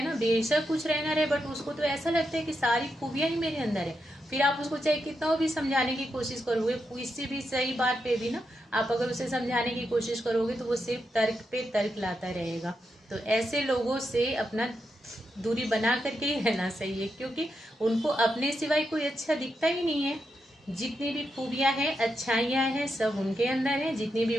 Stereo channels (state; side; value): normal; both; correlation 0.84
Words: ना, बेशक कुछ रहना रहे, बट उसको तो ऐसा लगता है कि सारी खूबियां ही मेरे अंदर है। फिर आप उसको चाहे कितना भी समझाने की कोशिश करोगे, किसी भी सही बात पे भी ना आप अगर उसे समझाने की कोशिश करोगे तो वो सिर्फ तर्क पे तर्क लाता रहेगा। तो ऐसे लोगों से अपना दूरी बना करके ही रहना सही है, क्योंकि उनको अपने सिवाय कोई अच्छा दिखता ही नहीं है। जितनी भी खूबियां हैं, अच्छाइयां हैं, सब उनके अंदर है, जितनी भी